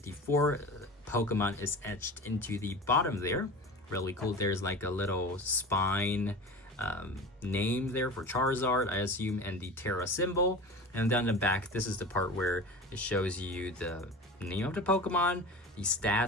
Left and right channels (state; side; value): normal; both; correlation 0.33